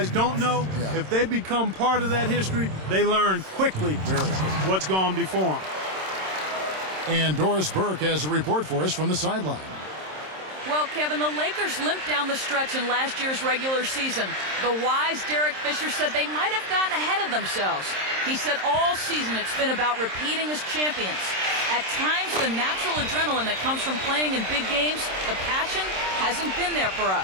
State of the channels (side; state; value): left; late; 26 ms